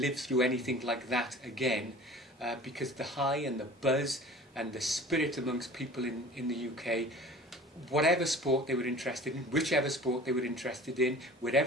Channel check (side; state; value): both; normal; correlation 0.43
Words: through anything like that again, because the high and the buzz and the spirit amongst people in the UK, whatever sport they were interested in, whichever sport they were interested in,